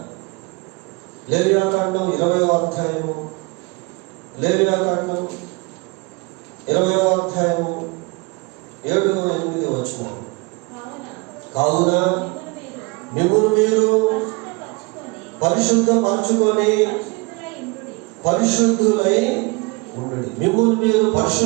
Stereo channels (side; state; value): left; quieter; 27.0 dB